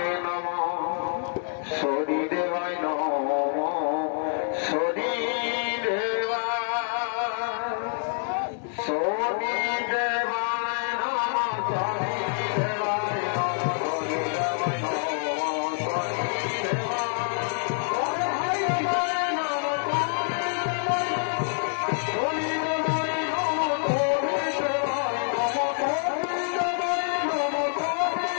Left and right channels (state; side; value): silent; right; 60 dB below the other